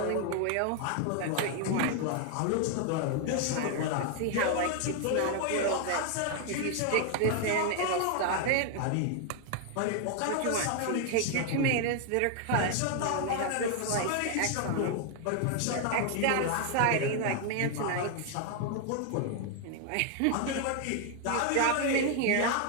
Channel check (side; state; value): both; different; correlation 0.00